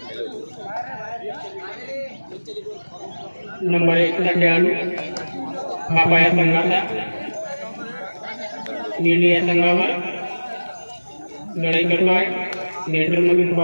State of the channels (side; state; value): both; inverted; correlation -1.00